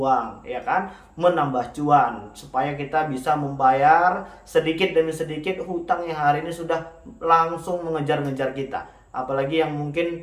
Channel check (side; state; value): both; identical; correlation 1.00